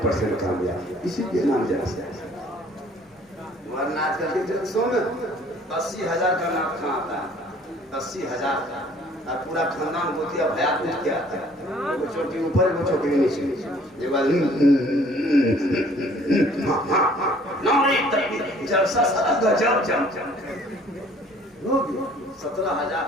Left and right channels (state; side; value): normal; both; correlation 0.56